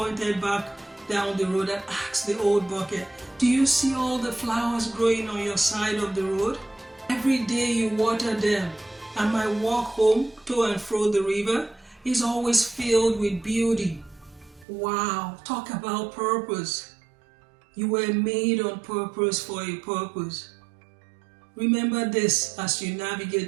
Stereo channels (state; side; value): drops out; left; at 14.7 s